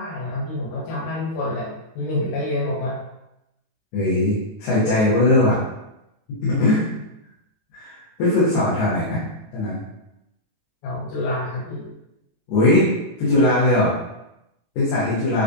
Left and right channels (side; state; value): right; late; 18 ms